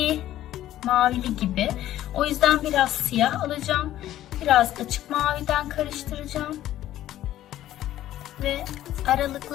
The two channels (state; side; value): quieter; right; 13.2 dB